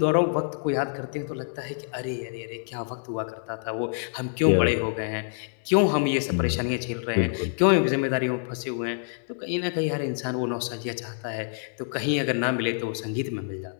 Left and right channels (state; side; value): silent; right; digital silence